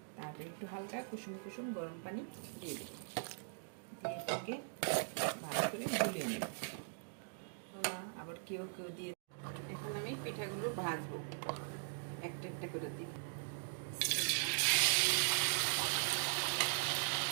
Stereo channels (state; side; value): silent; left; digital silence